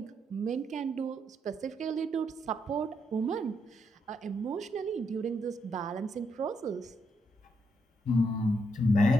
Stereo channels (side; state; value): both; normal; correlation 0.78